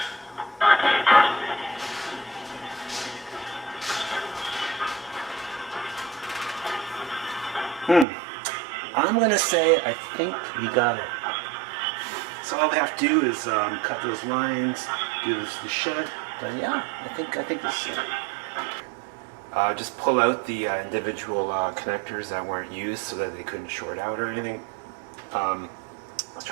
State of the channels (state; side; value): drops out; left; at 8.1 s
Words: I'm going to say I think we got it. So all we have to do is cut those lines, do the shed. But yeah, I think this is it. Just pull out the individual connectors that weren't used so that they couldn't short out or anything. I was